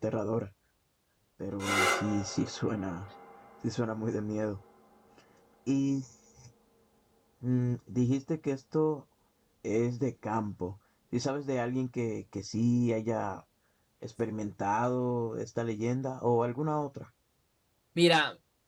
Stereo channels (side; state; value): both; identical; correlation 1.00